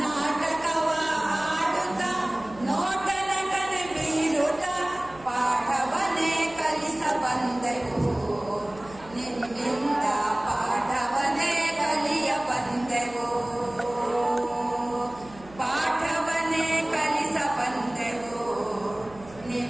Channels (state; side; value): noise; right; hum, 21 dB below the sound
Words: ನಾಟಕವ ಆಡುತ್ತ ನೋಟದ ಕಡೆ ಬೀರುತ್ತ ಪಾಠವನ್ನೇ ಕಲಿಸ ಬಂದೆವು ನಿಮ್ಮಿಂದ, ಪಾಠವನ್ನೇ ಕಲಿಯ ಬಂದೆವು, ಪಾಠವನ್ನೇ ಕಲಿಸ ಬಂದೆವು